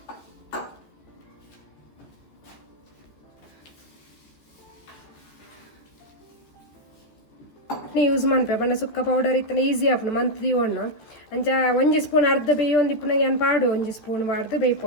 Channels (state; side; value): late; right; 14 ms